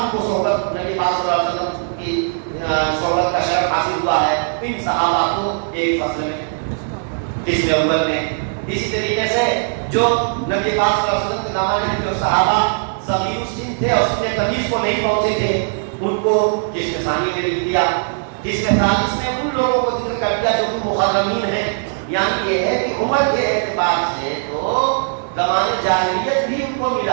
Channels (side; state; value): left; silent; digital silence